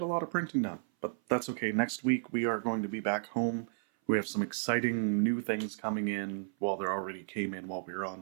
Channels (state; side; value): silent; left; 56 dB below the other